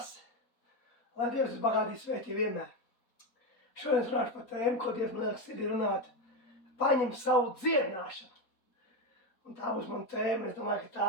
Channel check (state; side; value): late; right; 4.2 ms